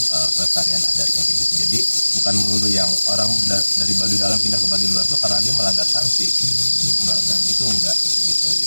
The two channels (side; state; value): both; inverted; correlation -1.00